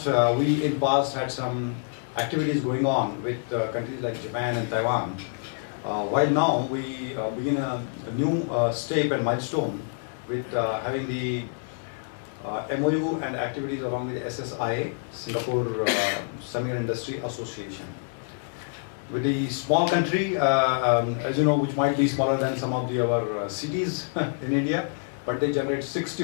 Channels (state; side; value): silent; right; digital silence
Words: we in past had some activities going on with countries like Japan and Taiwan. While now we begin a new step and milestone with having the MoU and activities along with the SSIA, Singapore Semiconductor Industry Association. With the small country, as you know, which might be smaller than some of the other cities in India, but they generate